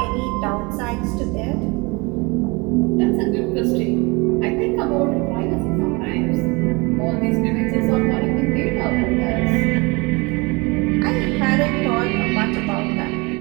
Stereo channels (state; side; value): quieter; left; 26.9 dB